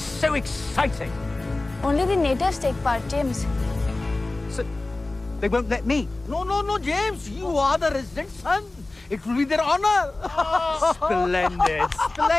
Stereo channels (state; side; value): quieter; right; 3.0 dB